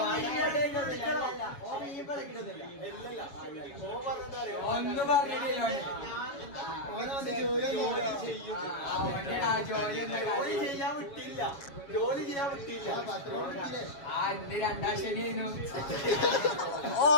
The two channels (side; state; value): right; late; 7.2 ms